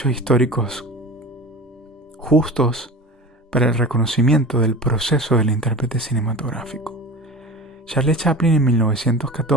históricos justos para el reconocimiento del proceso del intérprete cinematográfico. Charlie Chaplin en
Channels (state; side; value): normal; both; correlation 0.35